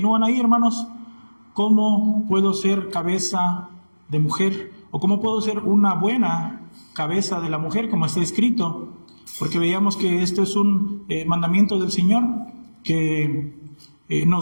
ahí, hermanos. ¿Cómo puedo ser cabeza de mujer? ¿O cómo puedo ser una buena cabeza de la mujer, como está escrito? Porque veíamos que esto es un mandamiento del Señor, que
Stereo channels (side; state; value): both; inverted; correlation -1.00